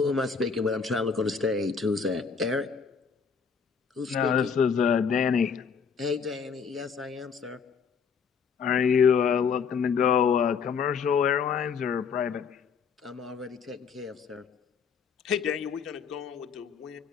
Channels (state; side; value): quieter; right; 6.1 dB